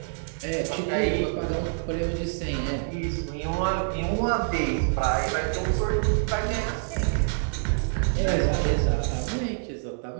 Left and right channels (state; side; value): silent; left; digital silence